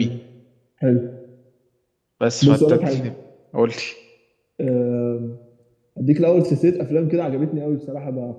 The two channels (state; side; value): identical; both; correlation 1.00